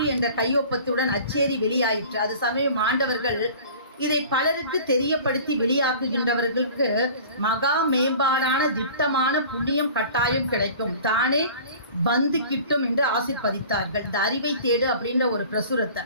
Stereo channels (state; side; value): inverted; both; correlation -0.43